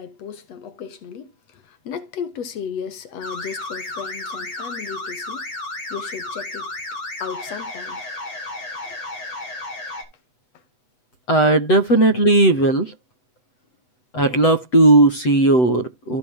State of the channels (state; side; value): late; right; 8.0 ms